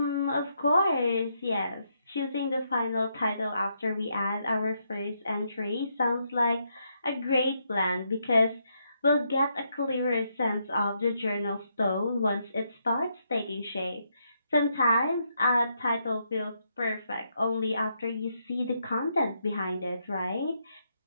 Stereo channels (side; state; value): both; inverted; correlation -0.78